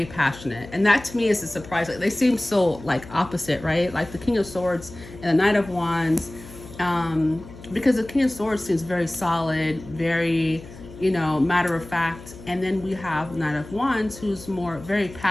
passionate. And that to me is a surprise. Like they seem so like opposite, right? Like the King of Swords and the Knight of Wands. Because the King of Swords seems very solid, very matter of fact, and then we have Knight of Wands, who's very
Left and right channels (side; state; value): left; noise; hum, 17 dB below the sound